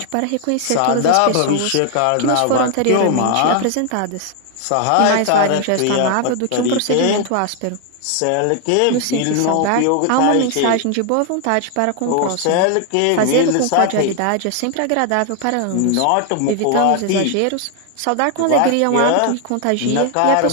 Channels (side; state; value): both; different; correlation 0.00